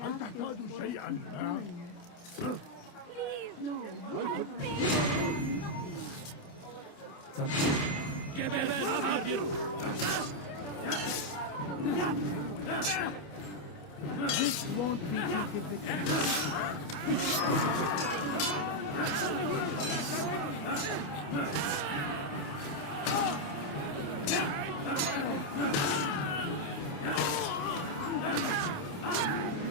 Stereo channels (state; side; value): late; right; 28 ms